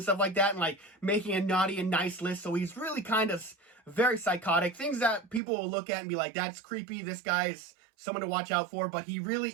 stuff like that and like making a naughty and nice list. So he's really kind of very psychotic. Things that people will look at and be like, that's creepy. This guy is someone to watch out for. But he really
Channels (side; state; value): left; drops out; at 5.4 s